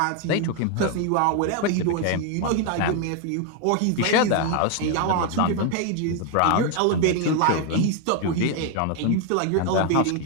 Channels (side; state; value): both; different; correlation 0.01